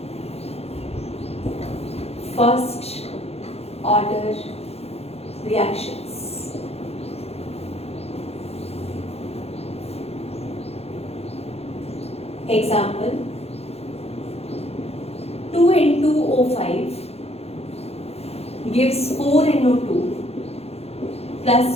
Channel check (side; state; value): right; late; 0.30 ms